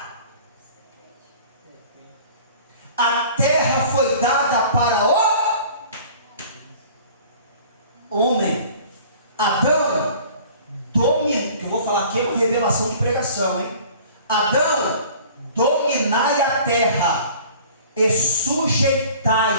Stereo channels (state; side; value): inverted; both; correlation -0.47